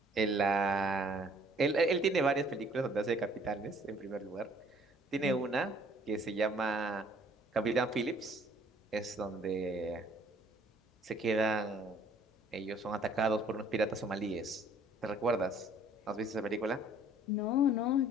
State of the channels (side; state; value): both; normal; correlation 0.58